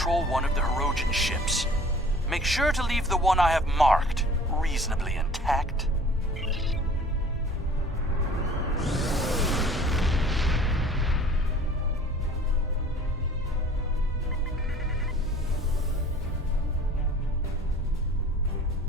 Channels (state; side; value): normal; both; correlation 0.49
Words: one of the Hirogen ships. Make sure to leave the one I have marked reasonably intact.